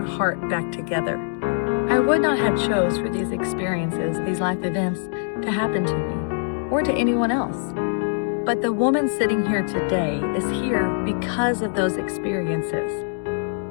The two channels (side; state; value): right; silent; digital silence